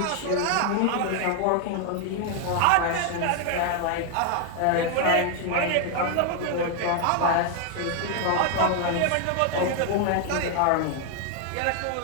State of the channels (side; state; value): both; different; correlation 0.00